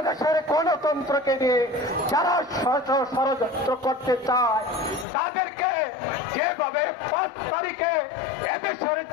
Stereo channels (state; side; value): drops out; right; at 5.1 s